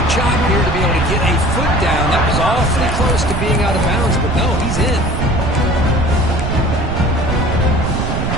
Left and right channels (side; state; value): right; noise; rumble, 2 dB below the sound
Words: job here to be able to get a foot down. That was awfully close to being out of bounds, but no, he's in.